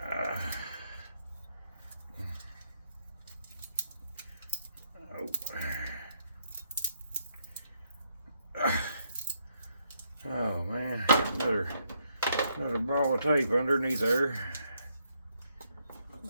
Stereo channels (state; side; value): inverted; both; correlation -0.75